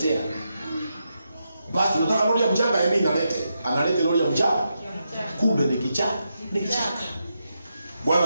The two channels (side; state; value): both; inverted; correlation -0.85